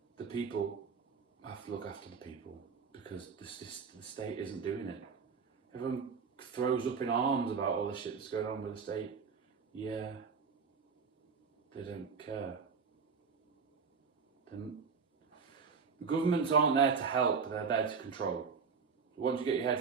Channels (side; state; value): left; quieter; 5.6 dB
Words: The people have to look after the people, because the state isn't doing it. Everyone throws up in arms about all the shit that's going on with the state. Yeah, they don't care. The governments aren't there to help, they're there to control. Once you get your